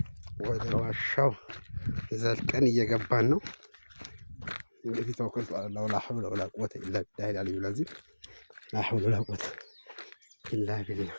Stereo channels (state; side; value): inverted; both; correlation -1.00